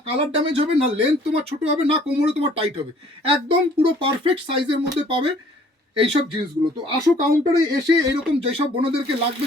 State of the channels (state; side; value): normal; both; correlation 0.57